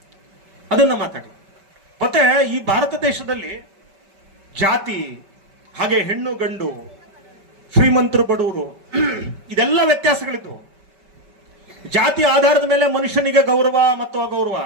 ಮತ್ತೆ ಈ ಭಾರತ ದೇಶದಲ್ಲಿ ಜಾತಿ, ಹಾಗೆ ಹೆಣ್ಣು ಗಂಡು, ಶ್ರೀಮಂತರು ಬಡವರು, ಇದೆಲ್ಲ ವ್ಯತ್ಯಾಸಗಳಿದ್ವು. ಜಾತಿ ಆಧಾರದ ಮೇಲೆ ಮನುಷ್ಯನಿಗೆ ಗೌರವ ಮತ್ತು ಅಗೌರವ.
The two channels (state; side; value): late; left; 5.1 ms